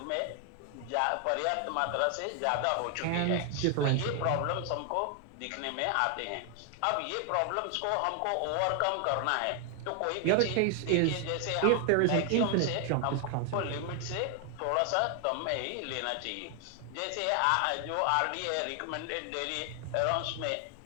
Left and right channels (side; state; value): both; different; correlation 0.00